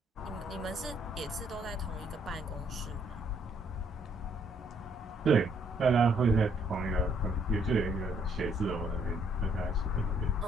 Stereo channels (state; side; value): normal; both; correlation 0.68